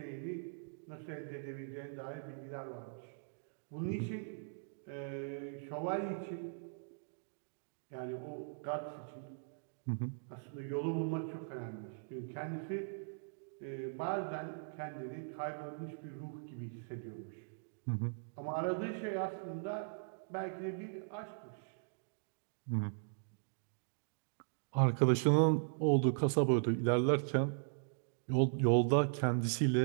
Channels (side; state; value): left; silent; digital silence